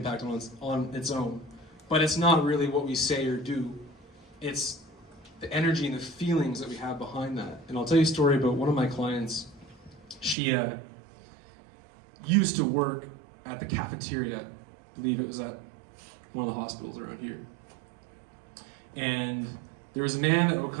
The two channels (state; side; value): drops out; left; at 10.4 s